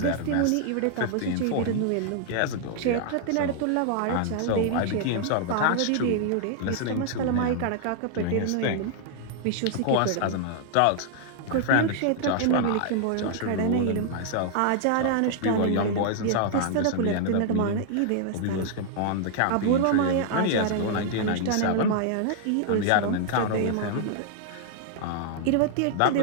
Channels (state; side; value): different; both; correlation -0.01